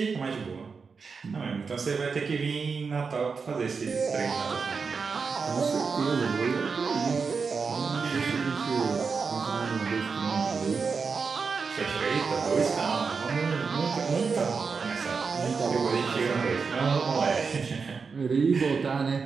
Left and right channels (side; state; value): left; quieter; 5.2 dB